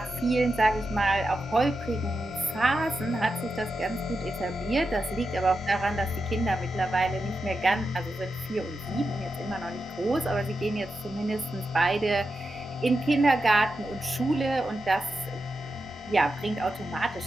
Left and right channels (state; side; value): normal; both; correlation 0.89